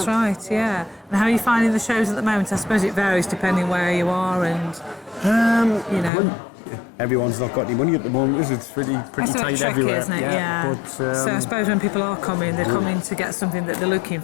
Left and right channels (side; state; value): right; drops out; at 6.1 s